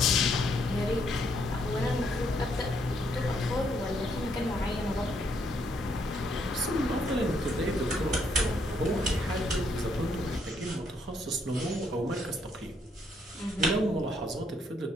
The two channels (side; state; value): both; normal; correlation 0.72